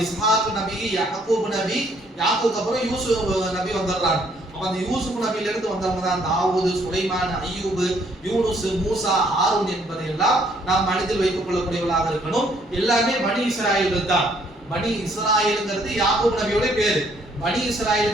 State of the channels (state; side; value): normal; both; correlation 0.66